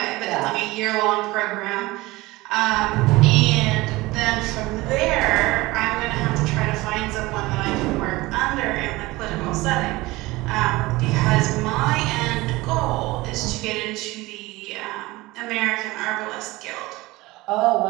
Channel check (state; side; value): quieter; left; 20.5 dB